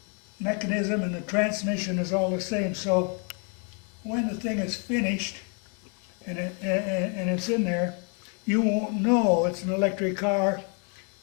mechanism and the transmission is all the same. So when the thing is finished and it's in there, you won't know it's an electric car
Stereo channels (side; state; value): right; quieter; 39.3 dB